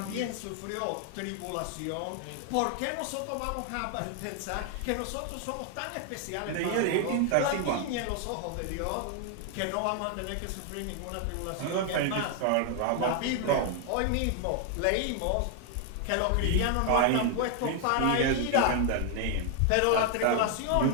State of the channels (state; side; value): different; both; correlation 0.00